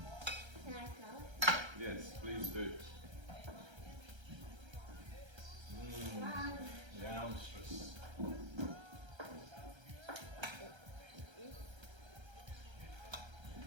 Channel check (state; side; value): late; left; 1.3 ms